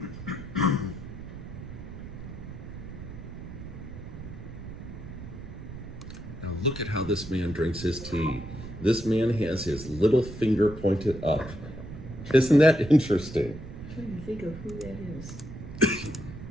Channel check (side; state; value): right; noise; rumble, 11 dB below the sound